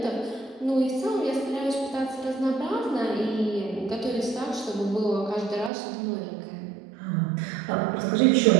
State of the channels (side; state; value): left; drops out; at 5.7 s